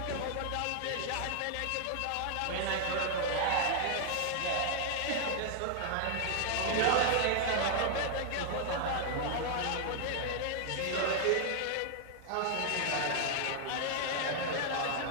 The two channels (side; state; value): both; different; correlation 0.00